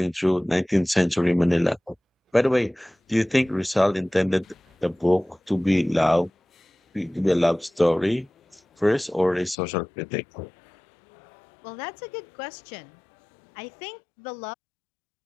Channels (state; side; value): drops out; right; at 9.6 s